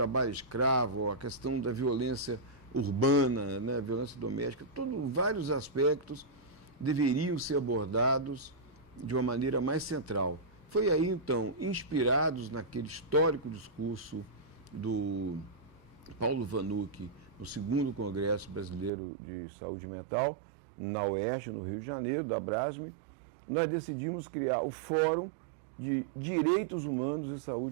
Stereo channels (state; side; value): drops out; left; at 18.9 s